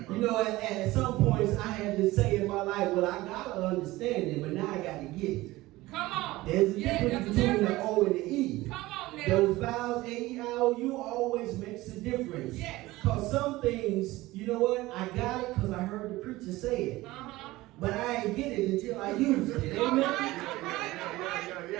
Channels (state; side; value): quieter; left; 18.7 dB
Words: You know, at some points I had to say in my life, well, I got to understand it, but now I got to get it. Come on. There's a difference between the O and the E. Come on now. Those vowels, A-E-I-O-U, always makes a difference. Yes. Because some things, you know what, I got it because I heard the preacher say it. Uh-huh. But I ain't get it until I use it. All Amen? right.